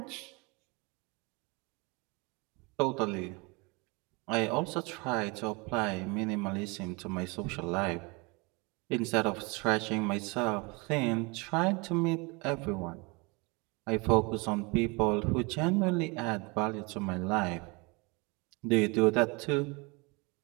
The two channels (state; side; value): quieter; left; 28.1 dB